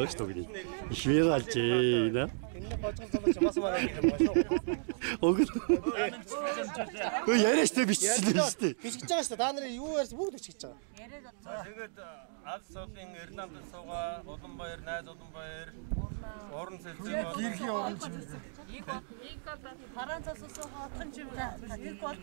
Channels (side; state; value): left; silent; digital silence